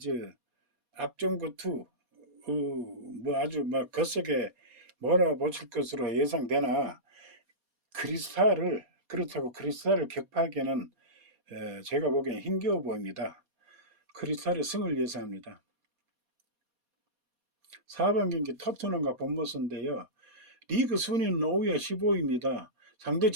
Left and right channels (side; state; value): left; late; 4.2 ms